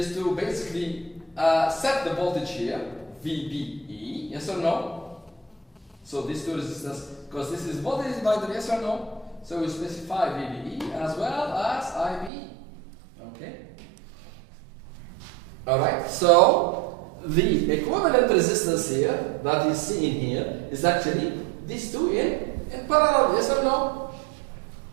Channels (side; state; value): left; drops out; at 12.3 s